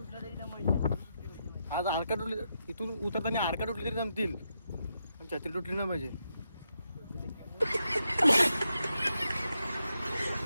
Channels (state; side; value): inverted; both; correlation -0.83